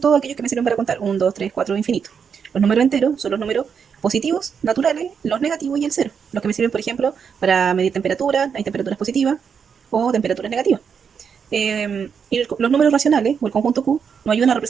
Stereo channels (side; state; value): left; quieter; 6.8 dB